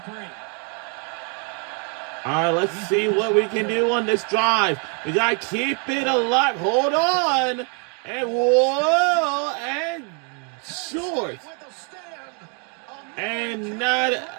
All right, let's see what we can do on this drive. We got to keep it alive. Hold on. And whoa, and short. And not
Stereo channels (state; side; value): quieter; left; 39.2 dB